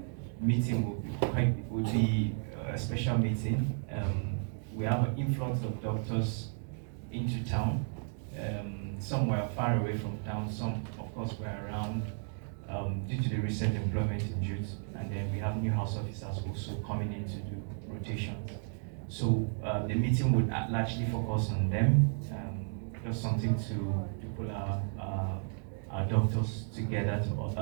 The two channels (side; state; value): left; silent; 56 dB below the other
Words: meeting will be a special meeting. We have an influx of doctors into town. Some were far away from town, some of course were around due to the recent employment in youth, and then we have new house officers also coming in to do rotations. So the meeting would largely focus on them, just something to pull our doctors together to